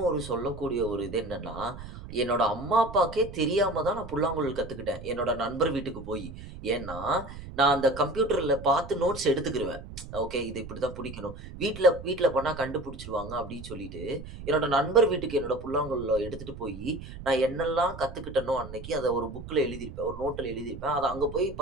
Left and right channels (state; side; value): noise; right; rumble, 13 dB below the sound